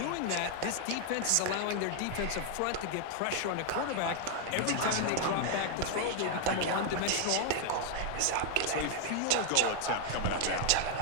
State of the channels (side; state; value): both; different; correlation 0.00